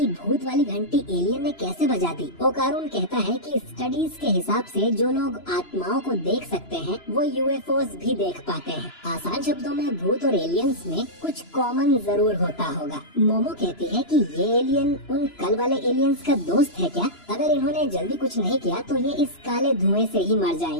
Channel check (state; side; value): late; right; 3.0 ms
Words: भूत वाली घंटी एलियन ने कैसे बजा दी। ओकारुन कहता है कि स्टडीज के हिसाब से जो लोग आत्माओं को देख सकते हैं वो यूएफओस भी देख पाते हैं। आसान शब्दों में भूत और एलियंस में कुछ कॉमन जरूर होता होगा। मोमो कहती है कि ये एलियन उन कल वाले एलियंस का दोस्त है क्या? अगर इन्होंने जल्दी कुछ नहीं किया तो ये इस काले धुएं से ही मर